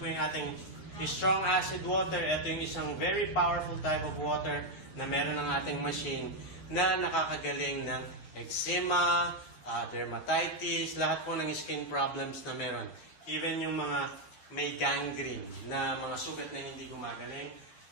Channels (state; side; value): late; right; 10 ms